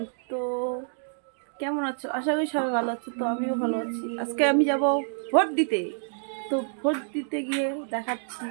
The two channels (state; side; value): silent; left; digital silence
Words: তো কেমন আছো? আশা করি সবাই ভালো আছো। তো আমিও ভালো আছি। আজকে আমি যাব ভোট দিতে। তো ভোট দিতে গিয়ে দেখাচ্ছি।